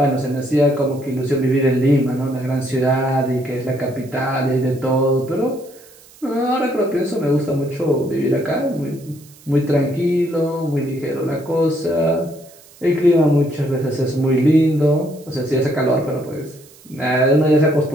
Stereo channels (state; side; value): noise; right; hiss, 25 dB below the sound